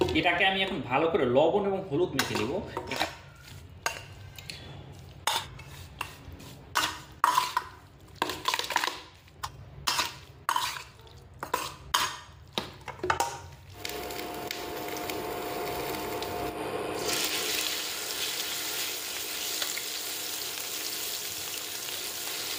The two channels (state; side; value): identical; both; correlation 1.00